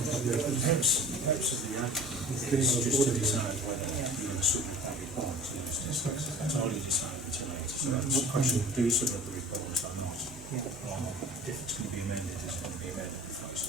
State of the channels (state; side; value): normal; both; correlation 0.43